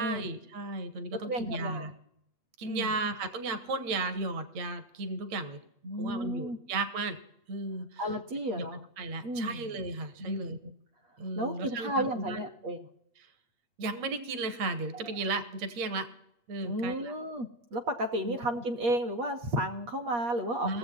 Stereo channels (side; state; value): left; late; 8.3 ms